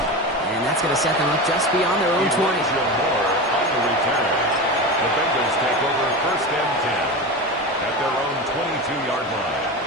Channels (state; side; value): normal; both; correlation 0.24